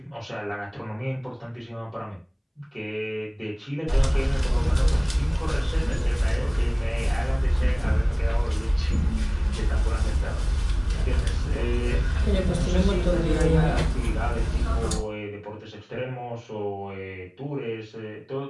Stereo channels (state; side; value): identical; both; correlation 1.00